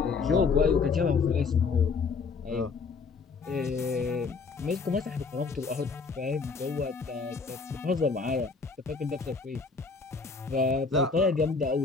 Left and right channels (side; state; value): right; quieter; 4.7 dB